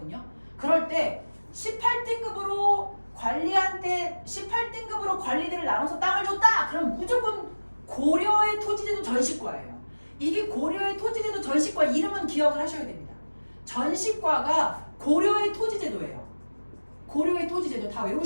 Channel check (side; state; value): both; inverted; correlation -1.00